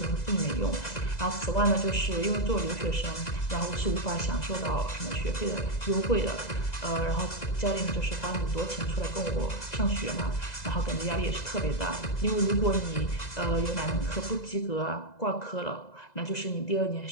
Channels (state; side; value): late; right; 2.0 ms